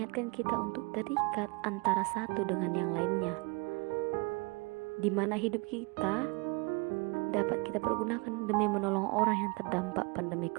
kita untuk terikat antara satu dengan yang lainnya, di mana hidup kita dapat kita pergunakan demi menolong orang yang terdampak pandemi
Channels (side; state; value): left; quieter; 28.1 dB